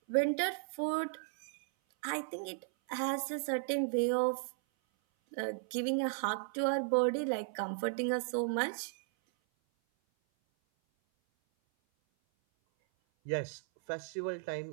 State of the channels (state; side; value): silent; left; 54 dB below the other